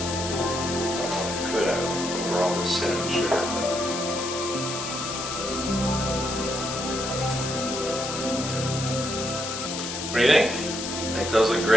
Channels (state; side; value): noise; left; hiss, 5 dB below the sound